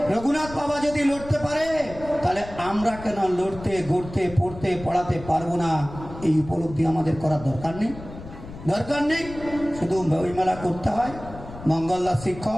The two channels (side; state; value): left; noise; rumble, 14 dB below the sound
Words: রঘুনাথ বাবা যদি লড়তে পারে, তাহলে আমরা কেন লড়তে, গড়তে, পড়তে, পড়াতে পারবো না? এই উপলব্ধি আমাদের করার দরকার নেই। শুধু বইমেলা করতে হয়। মঙ্গলদার